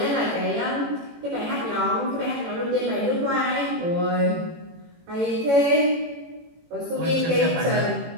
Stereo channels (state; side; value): late; left; 18 ms